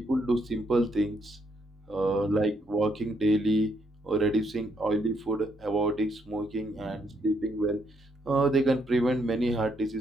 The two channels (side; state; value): both; normal; correlation 0.74